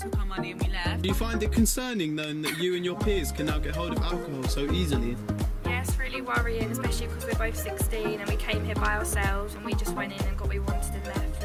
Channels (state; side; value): identical; both; correlation 1.00